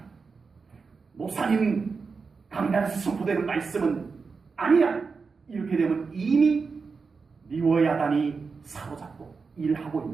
목사님 강단에서 선포되는 말씀은 아니야. 이렇게 되면 이미 리워야단이 사로잡고 일하고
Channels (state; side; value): quieter; left; 4.9 dB